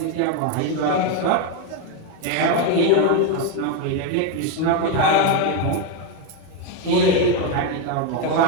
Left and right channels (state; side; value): different; both; correlation 0.02